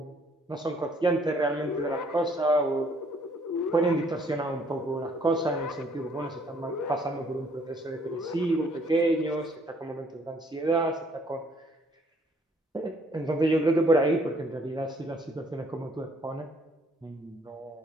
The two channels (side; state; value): both; normal; correlation 0.63